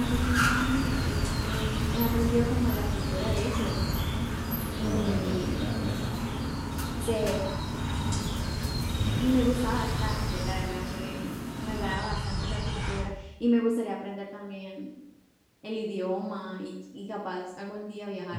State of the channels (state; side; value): identical; both; correlation 1.00